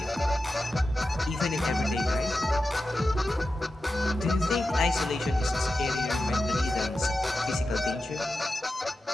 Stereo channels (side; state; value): both; normal; correlation 0.92